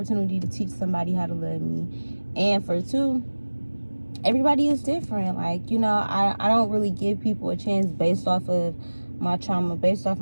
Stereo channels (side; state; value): both; inverted; correlation -1.00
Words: to teach somebody how to love me. And for two, everybody is different. Like, you know, I don't really give people a chance based off of my trauma, based off